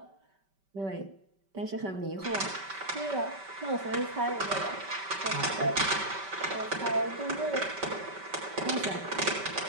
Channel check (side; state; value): left; late; 5.2 ms